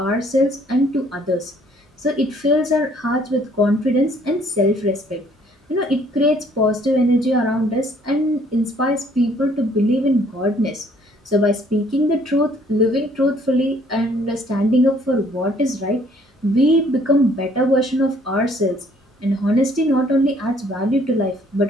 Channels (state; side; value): normal; both; correlation 0.61